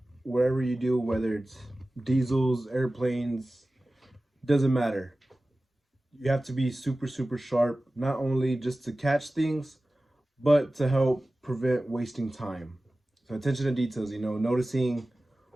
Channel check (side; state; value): both; normal; correlation 0.96